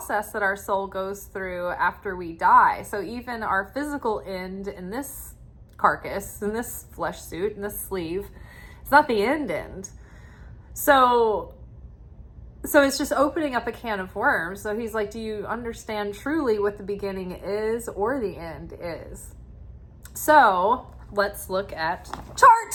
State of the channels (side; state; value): both; identical; correlation 1.00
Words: that our soul goes through after we die. So even our physical end in this carcass, in this flesh suit, in this sleeve, it's not the end. So it's just opening up a can of worms. So he's like, do you understand truly what the beginning is or the end is? So let's look at